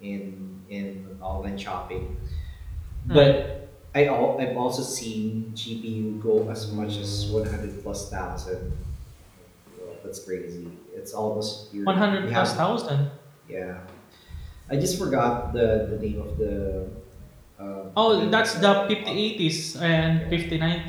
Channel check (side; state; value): both; identical; correlation 1.00